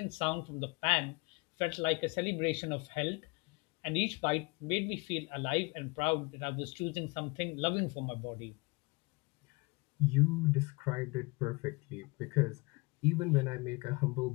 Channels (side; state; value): right; quieter; 26.2 dB